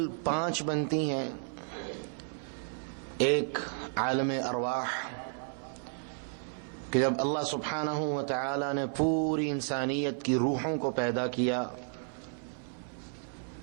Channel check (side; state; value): left; silent; 56 dB below the other